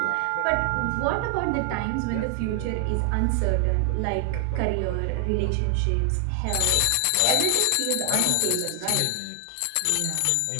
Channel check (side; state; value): both; different; correlation 0.00